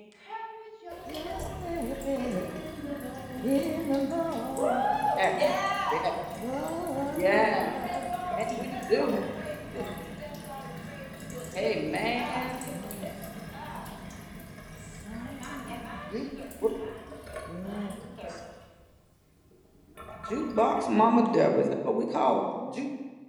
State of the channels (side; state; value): both; identical; correlation 1.00